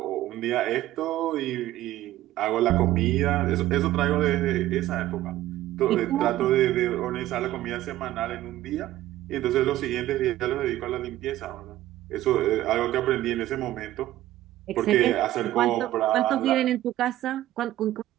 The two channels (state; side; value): quieter; left; 14.6 dB